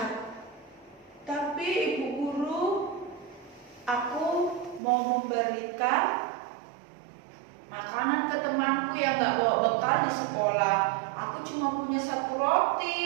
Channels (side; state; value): left; drops out; at 4.8 s